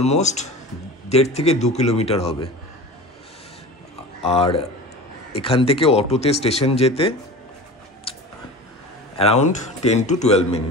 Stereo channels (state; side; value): normal; both; correlation 0.34